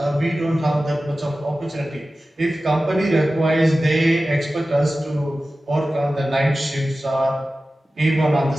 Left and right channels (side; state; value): both; normal; correlation 0.95